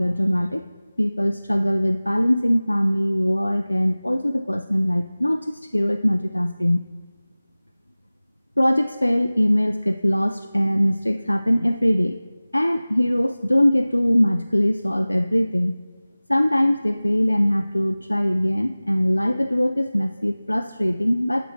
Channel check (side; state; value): both; inverted; correlation -0.99